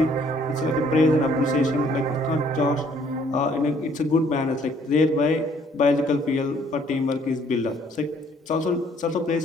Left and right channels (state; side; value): normal; both; correlation 0.62